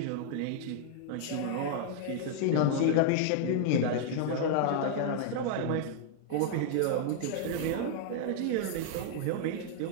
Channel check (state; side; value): different; both; correlation -0.01